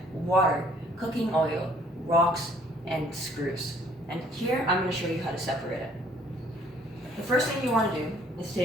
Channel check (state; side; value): normal; both; correlation 0.60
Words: water, cooking oil, rocks, and screws. And here I'm going to show you how to separate it. The first thing you want to do is